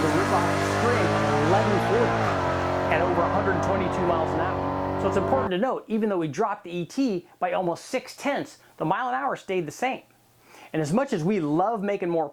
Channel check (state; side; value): identical; both; correlation 1.00